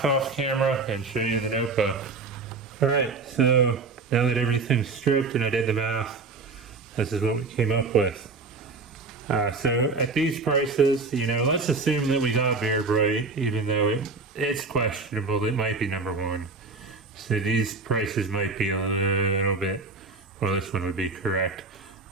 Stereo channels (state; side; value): quieter; left; 4.0 dB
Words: off camera and show you the notebook. Alright, so now that everything's stripped and I did the math, this is what we came up with. So at these prices, you know, let's assume that we got Bear Bright, even though it's questionable. It might be number one. So these prices might be a little bit, well, this one would be correct.